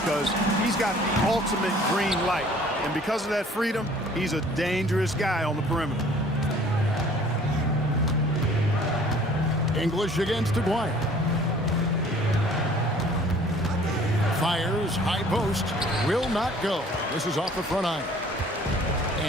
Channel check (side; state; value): both; normal; correlation 0.53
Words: he's got the ultimate green light. And because of that freedom, he's a dangerous guy on the perimeter. English against Aguirre. Fires, high post, will not go. This is off the front iron.